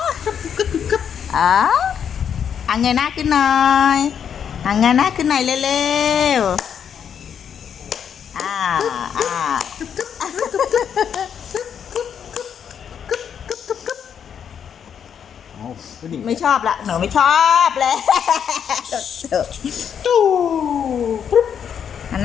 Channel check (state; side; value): quieter; right; 8.0 dB